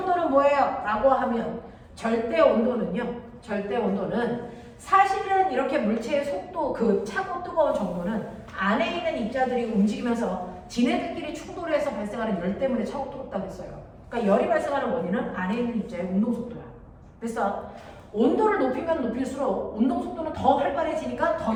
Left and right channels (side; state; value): both; identical; correlation 1.00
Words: 뭐예요? 라고 하면 절대 온도는요. 절대 온도는 사실은 이렇게 물체의 속도, 그 차고 뜨거운 정도는 안에 있는 입자들이 움직이면서 지네들끼리 충돌해서 발생하는 열 때문에 차고 뜨겁다고 했어요. 그러니까 열이 발생하는 원인은 안에 있는 입자의 운동 속도야. 그래서 온도를 높이면 높일수록 운동 속도는 더 활발해지니까